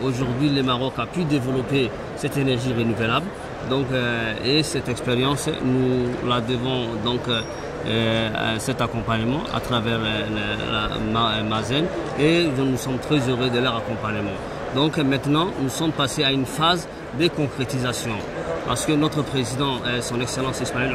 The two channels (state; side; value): identical; both; correlation 1.00